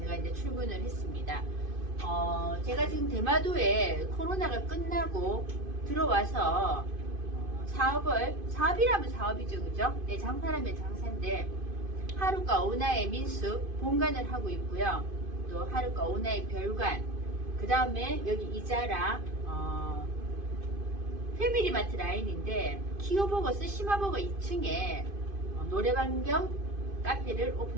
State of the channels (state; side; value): late; left; 2.5 ms